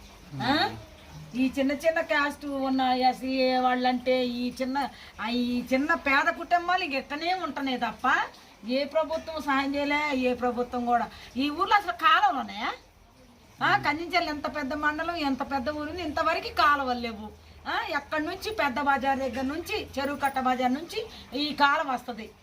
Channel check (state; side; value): identical; both; correlation 1.00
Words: ఈ చిన్న చిన్న క్యాస్ట్ ఉన్న ఎస్సీ వాళ్ళంటే ఈ చిన్న పేద కుటుంబాలు ఎక్కనే ఉంటున్నాయి తప్ప ఏ ప్రభుత్వం సహాయం చేయలే. ఏ ప్రభుత్వం కూడా ఈ ఊర్లో అసలు కాలువలు ఉన్నాయా? కందించాలి ఎంత పెద్ద మండలం, ఎంత పెద్ద ఊరు, ఇంతవరకు కాలువలు లేవు. ఎక్కడి నుంచి పెద్ద బజార్ దగ్గర నుంచి చెరువు కట్ట బజార్ నుంచి ఈ కాలం వస్తుంది.